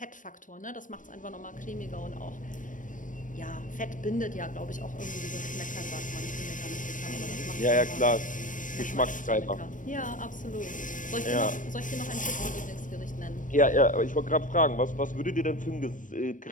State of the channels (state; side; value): late; right; 0.38 ms